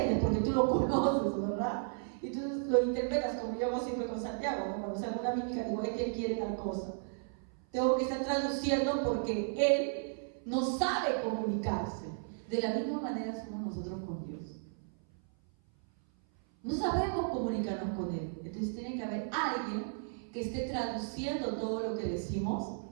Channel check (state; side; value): silent; left; 55 dB below the other